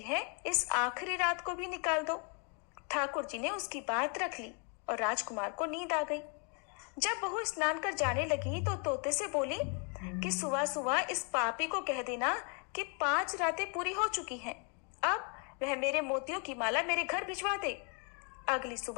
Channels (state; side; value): quieter; right; 37.3 dB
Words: है, इस आखिरी रात को भी निकाल दो। ठाकुर जी ने उसकी बात रख ली और राजकुमार को नींद आ गई। जब बहू स्नान कर जाने लगी तो तोते से बोली कि सुबह सुबह इस पापी को कह देना कि 5 रातें पूरी हो चुकी हैं, अब वह मेरे मोतियों की माला मेरे घर भिजवा दे। अगली